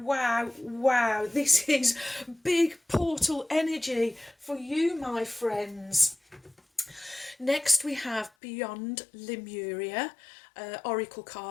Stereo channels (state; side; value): drops out; right; at 8.3 s